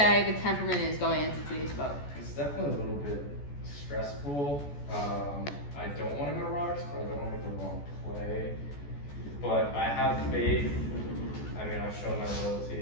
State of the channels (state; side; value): late; right; 14 ms